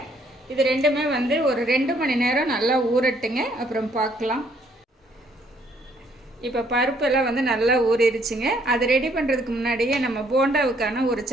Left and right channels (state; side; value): normal; both; correlation 0.66